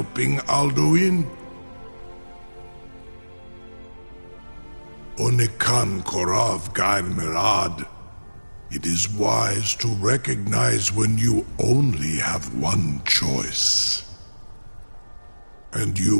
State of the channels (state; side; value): inverted; both; correlation -1.00